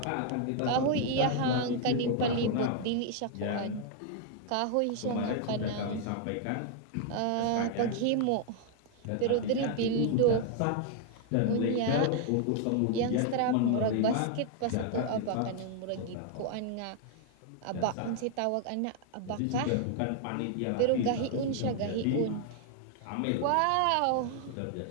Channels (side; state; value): both; different; correlation 0.00